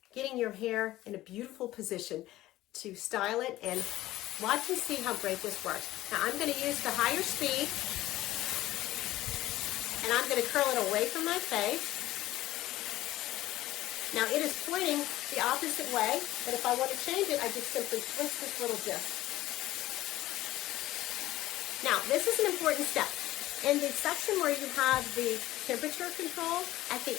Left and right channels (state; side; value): quieter; right; 15.9 dB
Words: getting your hair in a beautiful position to style it, and watch and see how great this works. Now I'm going to use the higher speed, and I'm going to curl it away from my face. Now it is pointing the opposite way, but if I want to change it, I just simply twist this little disc. Now this is an important step. In the section where you have the temperature control, at the